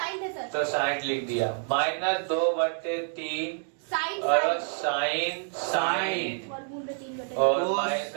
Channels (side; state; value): left; silent; digital silence